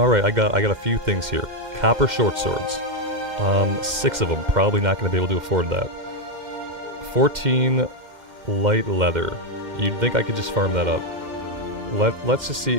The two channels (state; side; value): late; left; 2.1 ms